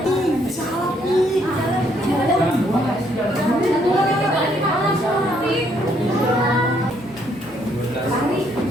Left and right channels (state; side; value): normal; both; correlation 0.69